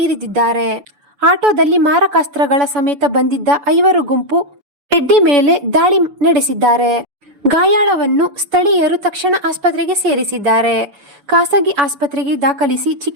ಇರಿದಿದ್ದಾರೆ. ಆಟೋದಲ್ಲಿ ಮಾರಕಾಸ್ತ್ರಗಳ ಸಮೇತ ಬಂದಿದ್ದ 5 ಗುಂಪು ರೆಡ್ಡಿ ಮೇಲೆ ದಾಳಿ ನಡೆಸಿದ್ದಾರೆ. ಗಾಯಾಳವನ್ನು ಸ್ಥಳೀಯರು ತಕ್ಷಣ ಆಸ್ಪತ್ರೆಗೆ ಸೇರಿಸಿದ್ದಾರೆ. ಖಾಸಗಿ ಆಸ್ಪತ್ರೆಗೆ ದಾಖಲಿಸಿ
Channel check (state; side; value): late; left; 7.0 ms